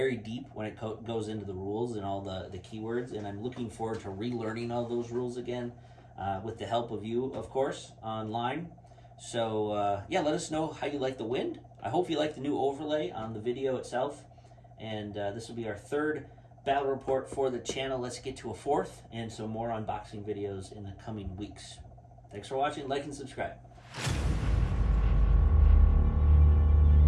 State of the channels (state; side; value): identical; both; correlation 1.00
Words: deep when it goes into the rules and all the keywords, and I'm looking forward to relearning all those rules again with the help of you, of course, online. So, let us know how you like the wind. I hope you like the new overlay on the video itself, and this will be our 3rd battle report for the channel. Let's get to a 4th and some more unboxing videos in the coming weeks. Thanks for watching. Like and subscribe.